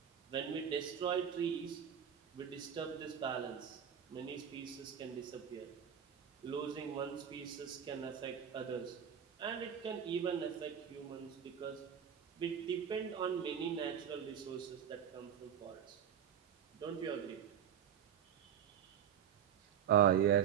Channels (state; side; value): quieter; left; 8.7 dB